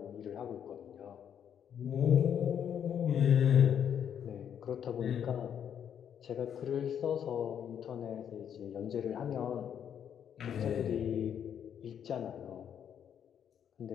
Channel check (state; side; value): quieter; right; 8.7 dB